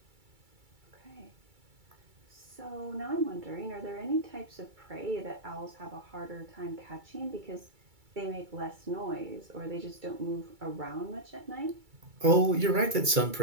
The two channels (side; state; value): left; late; 2.3 ms